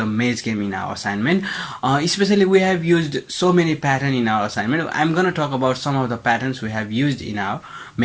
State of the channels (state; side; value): identical; both; correlation 1.00